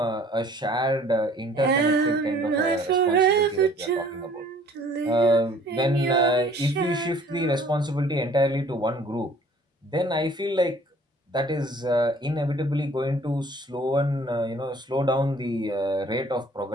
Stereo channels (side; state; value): both; normal; correlation 0.54